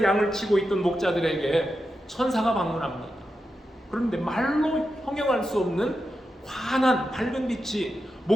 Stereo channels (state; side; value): normal; both; correlation 0.88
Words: 양을 치고 있던 목자들에게 천사가 방문합니다. 그런데 말로 형용할 수 없는 환한 밝은 빛이